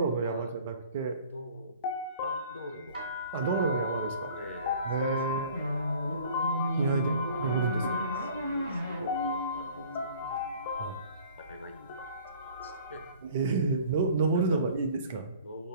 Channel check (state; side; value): inverted; both; correlation -0.49